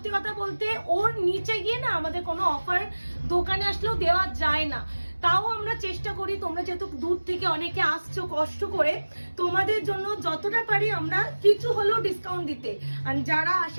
কথা বলতে ওর নিচে গিয়ে না আমাদের কোনো অফার দোকানে আসলেও দেওয়া যায় না। তাও আমরা চেষ্টা করি, তোমরা যেহেতু দূর থেকে অনেকে আসছো কষ্ট করে, তোমাদের জন্য যতটা পারি আমরা কিছু হলেও ডিসকাউন্ট দিতে। আর যারা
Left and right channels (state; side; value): inverted; both; correlation -1.00